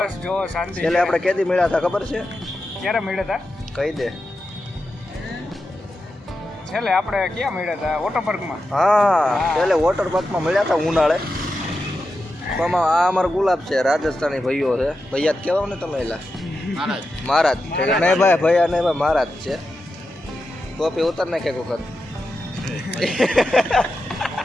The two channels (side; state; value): both; normal; correlation 0.89